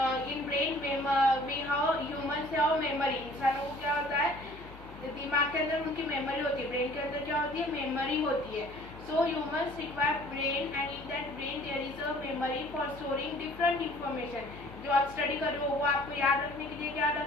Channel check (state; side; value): noise; left; hum, 18 dB below the sound